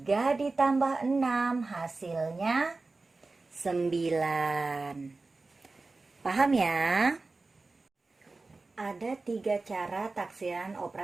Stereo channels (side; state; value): left; quieter; 3.6 dB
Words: ditambah 6 hasilnya 9. Paham ya? Ada 3 cara taksiran